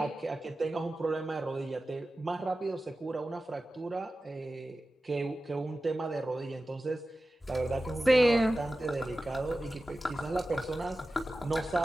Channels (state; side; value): normal; both; correlation 0.95